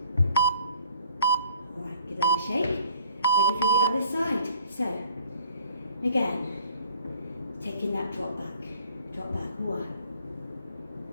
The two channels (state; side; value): inverted; both; correlation -0.56